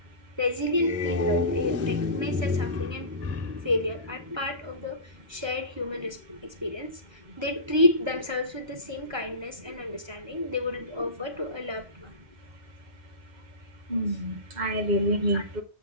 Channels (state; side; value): late; left; 1.3 ms